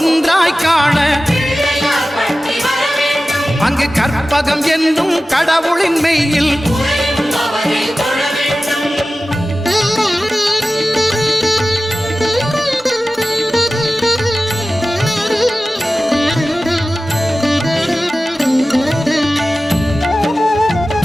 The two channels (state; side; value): normal; both; correlation 0.95